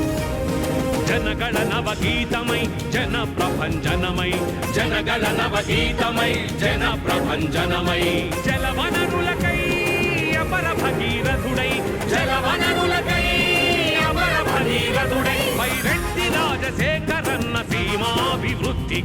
జనగణ నవగీతమై జన ప్రభంజనమై, జనగణ నవగీతమై జన ప్రభంజనమై. జలవనరులకై అపర భగీరథుడై, జలవనరులకై అపర భగీరథుడై. వైరెడ్డి రాజశేఖరన్న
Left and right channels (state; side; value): identical; both; correlation 1.00